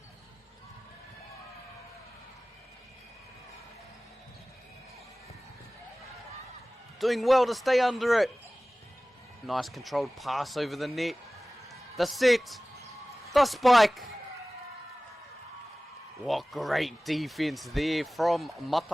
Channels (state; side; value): normal; both; correlation 0.98